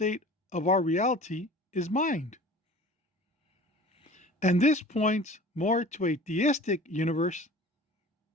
of our reality is mind. And this points more to a theistic universe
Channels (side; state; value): both; normal; correlation 0.42